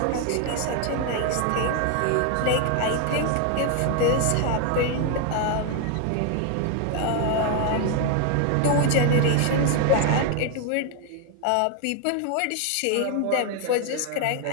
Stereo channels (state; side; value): different; both; correlation 0.00